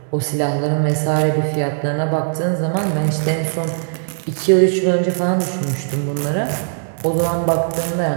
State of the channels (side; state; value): left; silent; digital silence